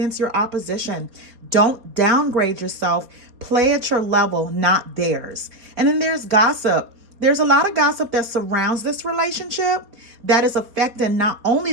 your opposition. Don't downgrade yourself. Play at your level, not theirs. And then there's gossip. There's a lot of gossip that surrounds this relationship that is affecting not only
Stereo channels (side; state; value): left; late; 4.2 ms